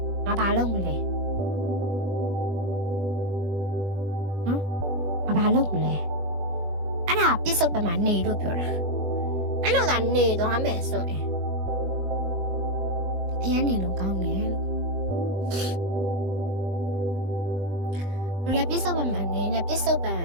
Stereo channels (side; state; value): left; late; 20 ms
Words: ငါဘာလုပ်မလဲဘာလုပ်မလဲအဲ့ဒါပြစ္ဆုတ်ပံမှာနေလို့ပြောတာအဲ့လိုကနေသွားမယ်ဆိုရင်အရင်နေလို့ကောင်းတယ်လူလည်းပြစ္ဆုတ်ပံမှာနေနဲ့ပြစ္ဆုတ်ပံ